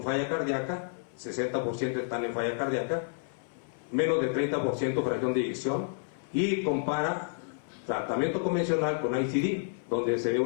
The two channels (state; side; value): silent; right; 58 dB below the other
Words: falla cardíaca, 60% están en falla cardíaca, menos de 30% fracción de eyección, y compara tratamiento convencional con ICD, donde se ve